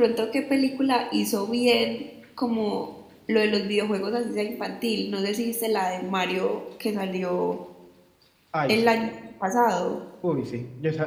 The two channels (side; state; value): both; identical; correlation 1.00